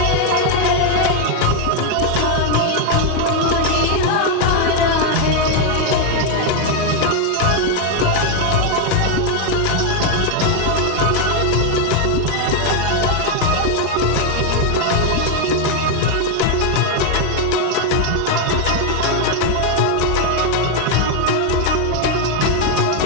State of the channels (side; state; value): both; different; correlation 0.01